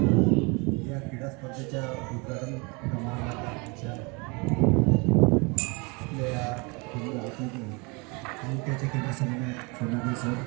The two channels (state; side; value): quieter; left; 29.5 dB